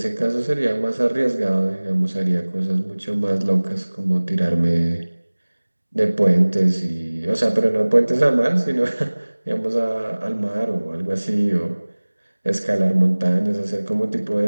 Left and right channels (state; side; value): inverted; both; correlation -1.00